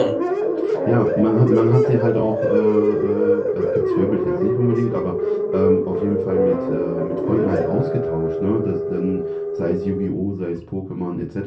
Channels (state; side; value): identical; both; correlation 1.00